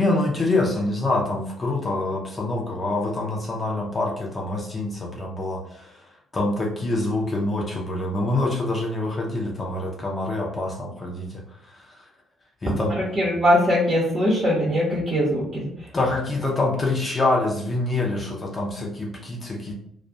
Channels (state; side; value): normal; both; correlation 0.72